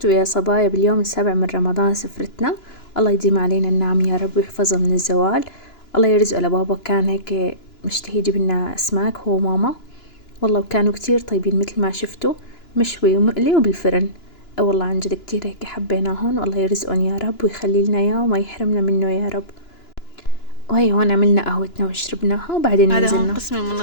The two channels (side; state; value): right; late; 2.9 ms